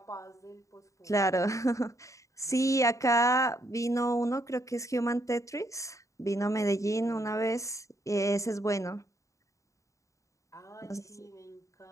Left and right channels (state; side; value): late; right; 0.15 ms